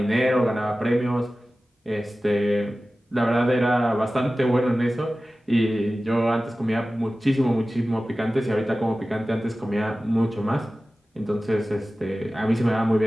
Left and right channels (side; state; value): both; normal; correlation 0.96